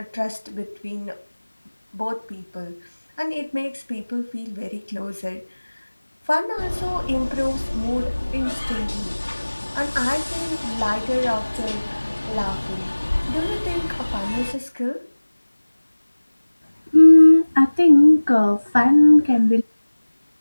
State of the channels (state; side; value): inverted; both; correlation -1.00